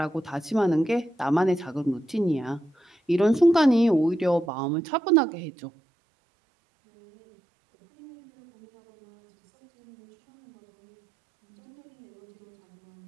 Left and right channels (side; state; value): left; drops out; at 4.5 s